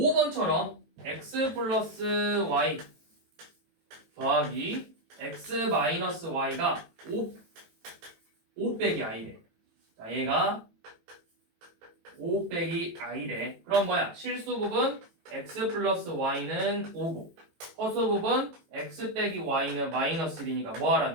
x 플러스 y 더하기 x 마이너스 y가 5 빼기 i래. 자, 얘가 5 빼기 i래. 그럼 뭐야? 실수 부분 x 플러스 y는 5고 허수 부분 x 빼기 y는 마이너스 1이니까 뭐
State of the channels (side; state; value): left; late; 18 ms